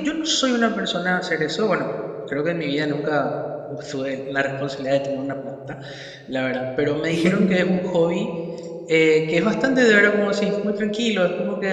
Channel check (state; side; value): identical; both; correlation 1.00